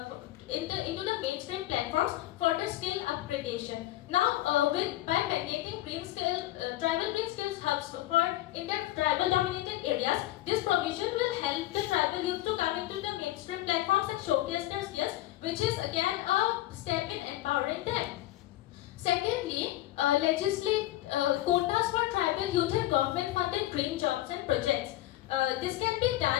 into the mainstream platforms for the skill upgradation. Now, by mandating tribal green skills hubs in the tribal dominated areas, this provision will help the tribal youth to come into the mainstream platforms and showcase their skills, which is again a step in empowering them. Secondly, legislate quotas for tribal youth in government-funded green jobs and projects. This can be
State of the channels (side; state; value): right; quieter; 15.6 dB